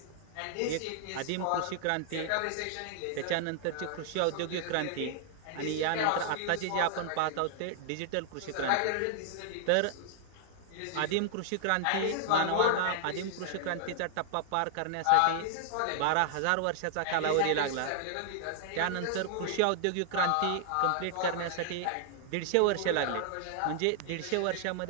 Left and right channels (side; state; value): both; different; correlation -0.01